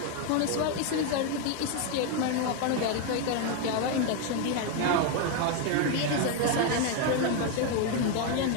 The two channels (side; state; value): both; different; correlation 0.01